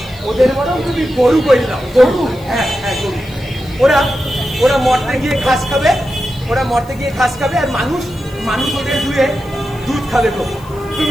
বরং তুমি গরু করে দাও। গরু? হ্যাঁ গরু। ওরা মরতে গিয়ে ঘাস খাবে, আর মানুষ ওদের ধুয়ে দুধ খাবে গো।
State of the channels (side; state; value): left; noise; hiss, 25 dB below the sound